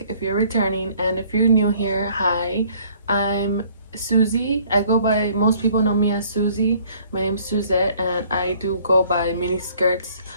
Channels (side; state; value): both; inverted; correlation -0.58